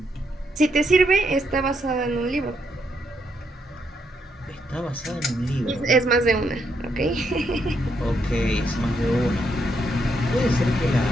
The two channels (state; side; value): normal; both; correlation 0.77